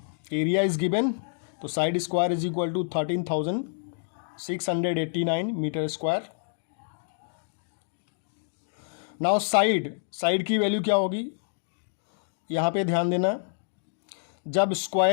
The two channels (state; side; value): silent; right; digital silence